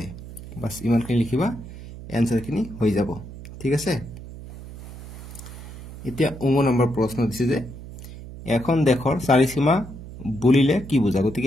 বাস ইমানখিনি লিখিবা এনসাৰখিনি হৈ যাব ঠিক আছে এতিয়া 9 নম্বৰ প্ৰশ্ন দিছে যে এখন দেশৰ চাৰিসীমা বুলিলে কি বুজা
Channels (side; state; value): right; noise; hum, 13 dB below the sound